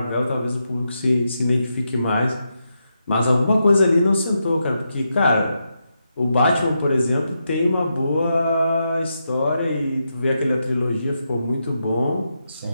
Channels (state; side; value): inverted; both; correlation -0.85